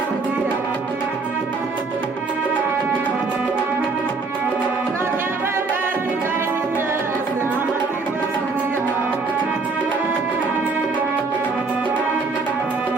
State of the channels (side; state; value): left; quieter; 4.2 dB